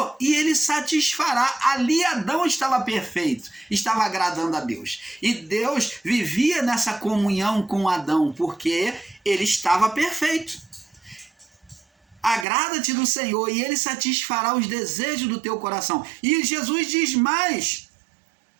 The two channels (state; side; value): drops out; left; at 12.5 s